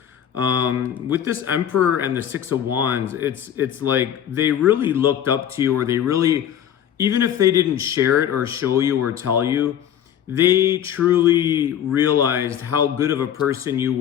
With this Emperor and the Six of Wands, it's like they really looked up to you, or they really, even if they didn't share it or show you or tell you, they truly realized how good of a person you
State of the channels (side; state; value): right; quieter; 9.8 dB